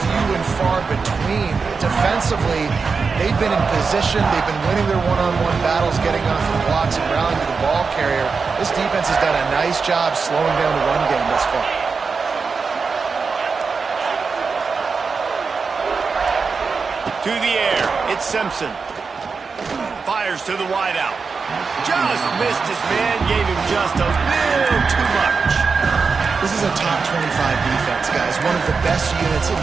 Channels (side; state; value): left; quieter; 5.0 dB